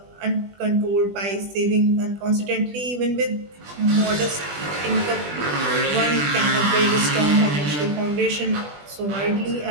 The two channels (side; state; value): left; late; 20 ms